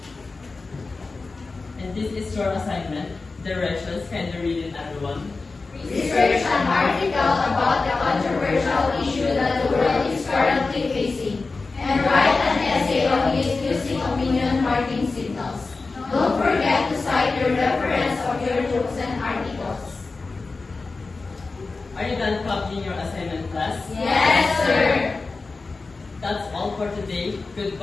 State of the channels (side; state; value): right; quieter; 3.9 dB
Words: And this is your assignment. Directions, can you read it, everyone? Research an article about the controversial issue that the world is currently facing, and write an essay on it using opinion marking signals. Don't forget to cite the reference of your books and articles. Are you done copying your assignment, class? Yes, sir. That's all for today.